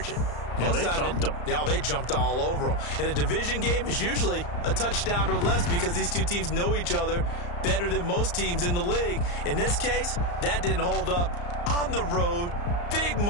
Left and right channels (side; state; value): right; late; 34 ms